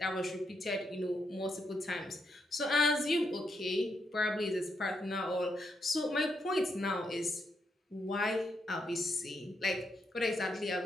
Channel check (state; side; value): normal; both; correlation 0.80